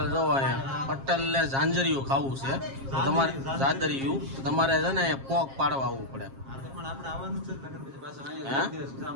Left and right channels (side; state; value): left; late; 7.4 ms